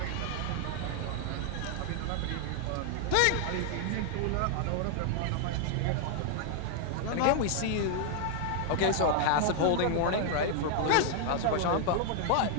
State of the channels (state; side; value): different; both; correlation 0.00